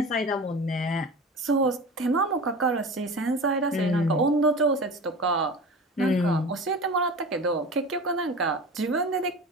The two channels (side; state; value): both; normal; correlation 0.33